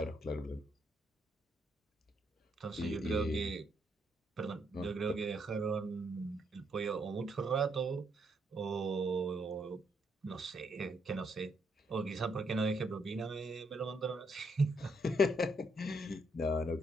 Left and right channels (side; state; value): both; normal; correlation 0.75